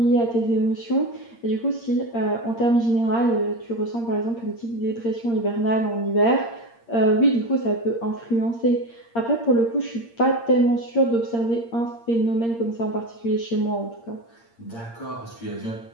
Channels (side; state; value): right; late; 8.7 ms